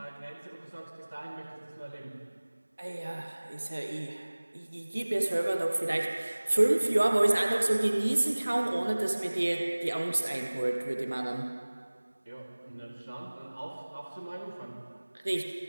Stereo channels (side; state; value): both; inverted; correlation -1.00